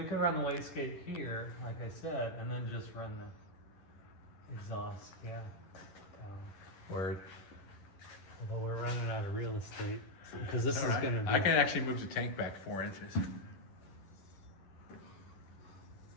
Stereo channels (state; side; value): late; right; 11 ms